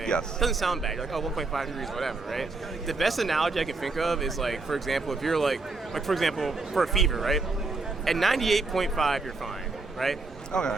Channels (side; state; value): left; quieter; 3.6 dB